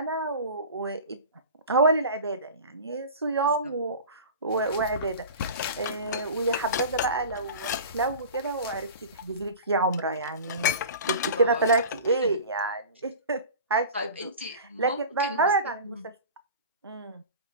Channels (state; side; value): inverted; both; correlation -0.35